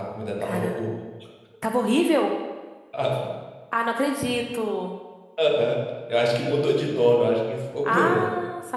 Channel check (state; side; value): identical; both; correlation 1.00